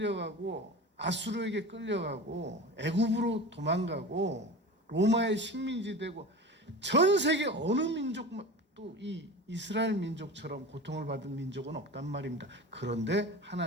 아수르에게 끌려가고 애굽으로 도망가고 로마의 식민지 되고 전 세계 어느 민족도 이 이스라엘 민족처럼 고통을 받은 민족은 없단 말입니다. 그런데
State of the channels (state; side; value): normal; both; correlation 0.32